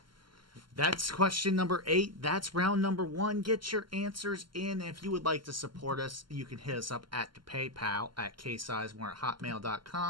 That's question number 8. That's round number 1. Get your answers in. If you would like to support us, you can hit us up at the PayPal at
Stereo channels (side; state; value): left; late; 0.72 ms